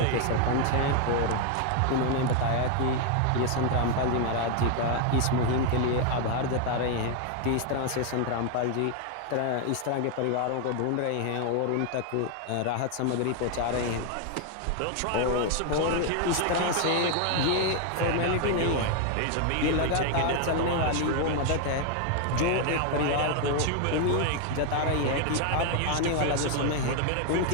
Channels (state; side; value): different; both; correlation 0.01